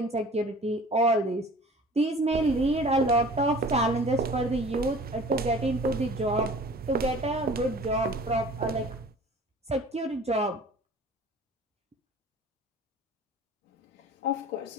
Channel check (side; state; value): both; normal; correlation 0.45